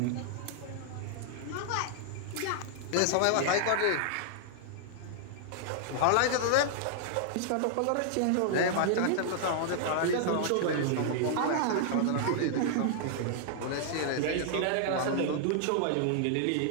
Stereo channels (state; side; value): different; both; correlation -0.01